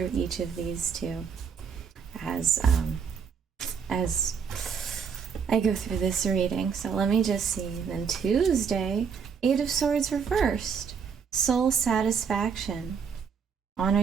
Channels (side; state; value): left; quieter; 6.4 dB